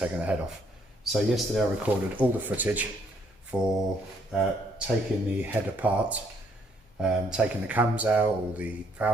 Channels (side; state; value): both; normal; correlation 0.68